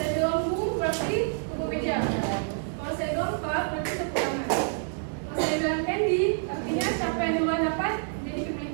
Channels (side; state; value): left; silent; 60 dB below the other